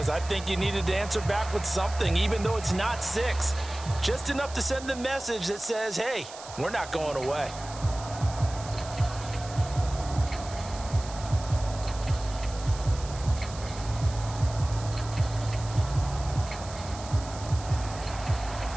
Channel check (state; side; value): noise; right; hiss, 15 dB below the sound